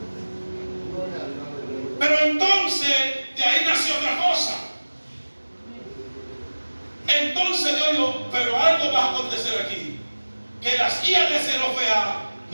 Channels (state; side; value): inverted; both; correlation -1.00